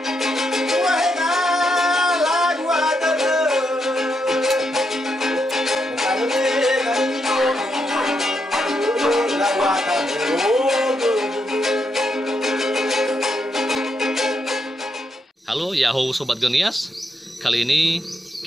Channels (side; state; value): both; normal; correlation 0.81